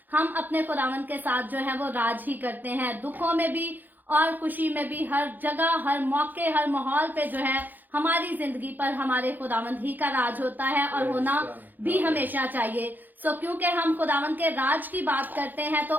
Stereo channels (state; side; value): late; left; 0.086 ms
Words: हम अपने खुदावंद के साथ जो है वो राज ही करते हैं, दुखों में भी और खुशी में भी। हर जगह, हर मौके, हर माहौल पे जो है हमारी जिंदगी पर हमारे खुदावंद ही का राज होता है और होना भी हमेशा चाहिए। सो क्योंकि हम खुदावंद के राज की बात करते हैं तो